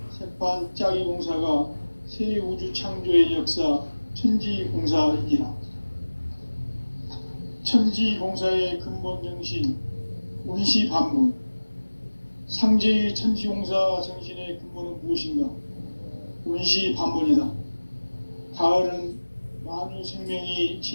새판짜기 공사가 새 우주 창조의 역사 천지공사이니라. 천지공사의 근본 정신 운시반문. 상제의 천지공사 정신의 근본은 무엇인가? 운시반문이다. 가을은 만유 생명이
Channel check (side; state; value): both; inverted; correlation -1.00